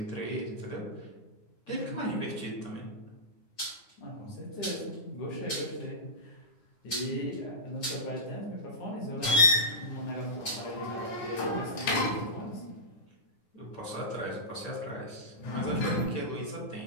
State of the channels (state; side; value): late; right; 9.6 ms